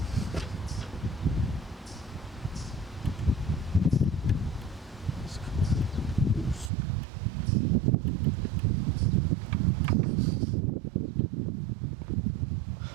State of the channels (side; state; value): left; drops out; at 6.7 s